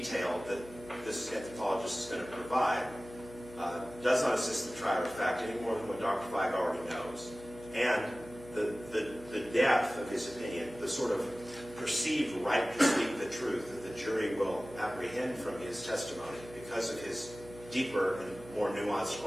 that this anthropologist is going to provide does not assist the trier of fact any more than what Dr. Feig already knows. And the depth of his opinion, the sort of perceived right to speak the truth that the jury will apprehend from his testimony because of his deeper and more nuanced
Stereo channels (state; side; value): noise; right; hum, 17 dB below the sound